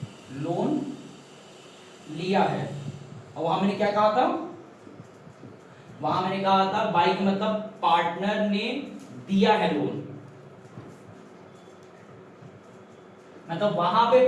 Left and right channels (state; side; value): identical; both; correlation 1.00